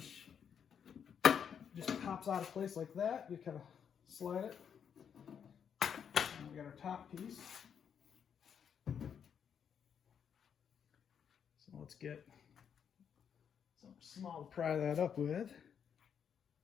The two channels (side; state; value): right; quieter; 7.7 dB